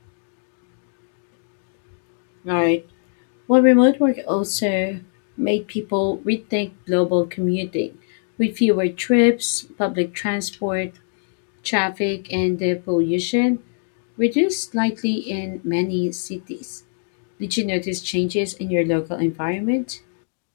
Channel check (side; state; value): right; silent; 60 dB below the other